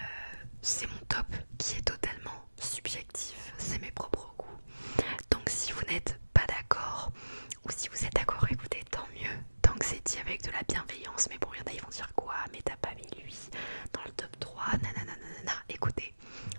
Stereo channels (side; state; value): both; inverted; correlation -1.00